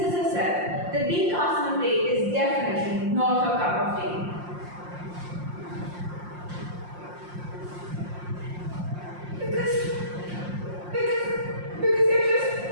herself that being cast in a play is definitely not her cup of tea. Because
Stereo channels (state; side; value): late; left; 5.7 ms